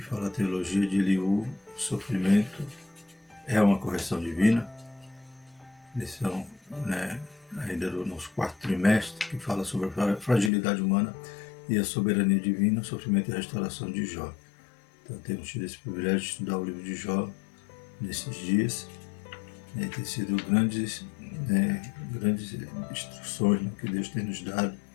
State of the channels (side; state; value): right; drops out; at 10.5 s